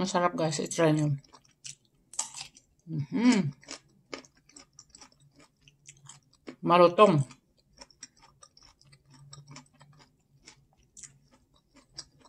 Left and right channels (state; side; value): identical; both; correlation 1.00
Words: guys. I-try nyo. Malutong.